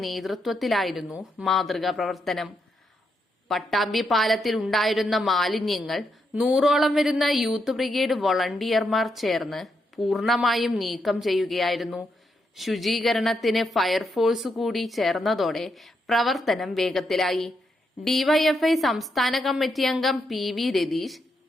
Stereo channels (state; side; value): normal; both; correlation 0.81